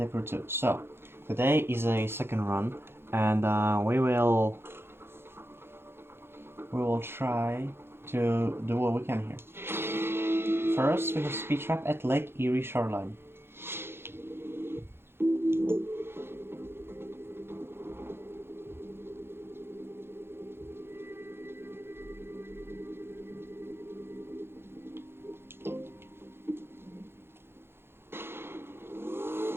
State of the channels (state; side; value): late; left; 0.11 ms